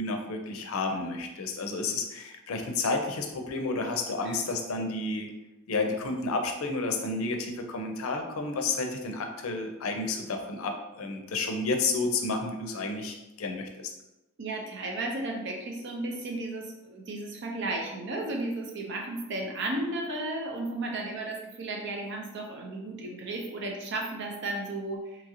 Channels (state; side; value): normal; both; correlation 0.14